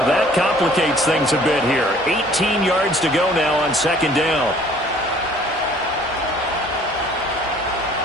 that complicates things a bit here. 18 yards to go now on 2nd down.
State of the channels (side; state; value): both; normal; correlation 0.55